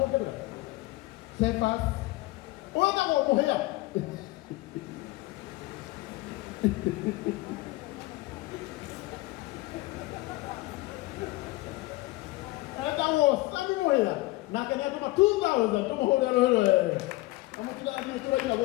Cephas wetagwo mũhĩa etagwo Sami mũhĩa nake nĩ atũma 2000 tũmũhũrĩre rũhĩ wega. Na mũtigathiĩ tũraina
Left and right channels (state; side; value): quieter; right; 19.9 dB